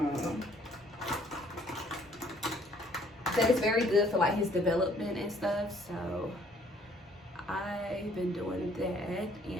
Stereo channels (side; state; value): both; normal; correlation 0.61